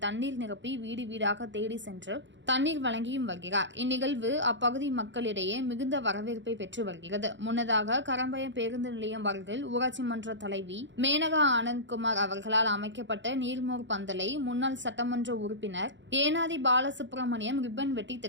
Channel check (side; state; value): left; late; 0.54 ms